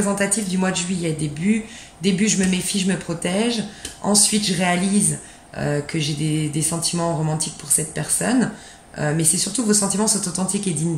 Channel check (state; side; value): identical; both; correlation 1.00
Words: du mois de juillet. Début, je me méfie, je me protège. Ensuite, je réalise que j'ai des sentiments romantiques pour cette personne. Mais c'est surtout que vos sentiments sont authentiques et dignes